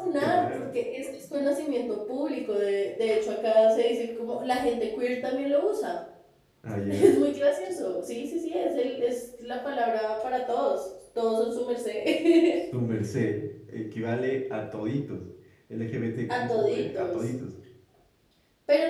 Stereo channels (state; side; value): identical; both; correlation 1.00